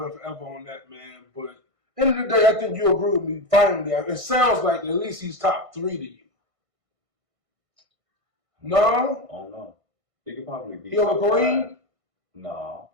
and forever on that, man. But end of the day, I think you agree with me. Finally, it sounds like at least he's top 3 to you. No? Oh no. He could probably be. He over Kareem? No.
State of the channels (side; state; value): left; late; 1.6 ms